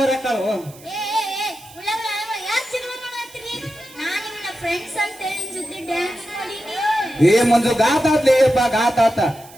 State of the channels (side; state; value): right; noise; hiss, 22 dB below the sound